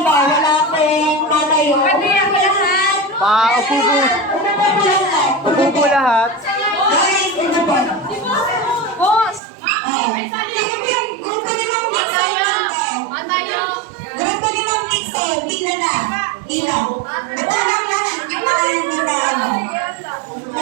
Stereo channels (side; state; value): left; drops out; at 9.4 s